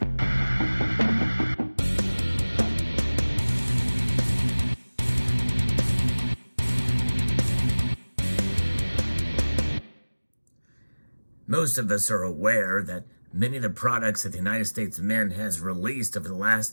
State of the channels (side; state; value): both; inverted; correlation -1.00